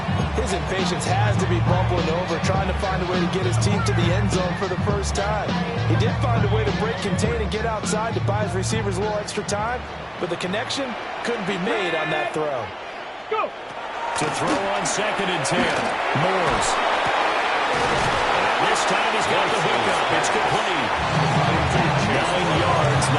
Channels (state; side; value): identical; both; correlation 1.00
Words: His impatience has to be bubbling over, trying to find a way to get his team to the end zone for the first time. He did find a way to break contain and get outside to buy his receivers a little extra time, but the connection couldn't be made on that throw. Go. To throw on 2nd and 10. Moores. And this time he's got the hookup. It's complete. 9 yards,